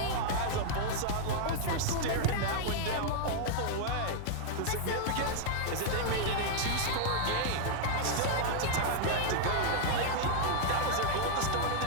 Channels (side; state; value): both; different; correlation -0.01